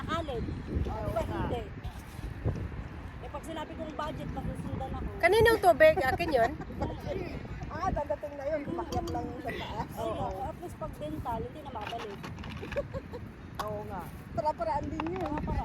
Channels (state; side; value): identical; both; correlation 1.00